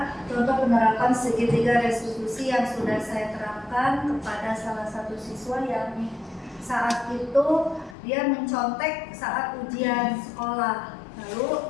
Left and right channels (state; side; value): drops out; right; at 8.0 s